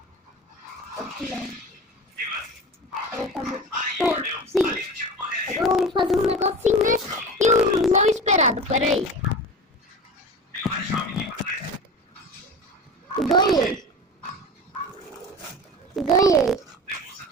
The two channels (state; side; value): normal; both; correlation 0.32